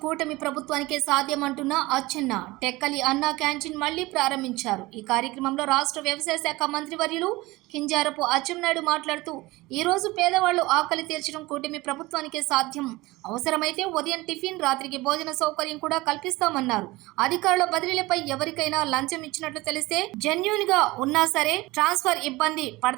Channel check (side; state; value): left; quieter; 20.8 dB